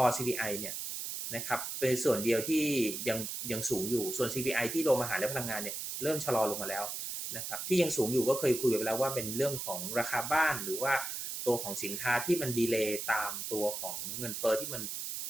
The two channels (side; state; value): right; noise; hiss, 5 dB below the sound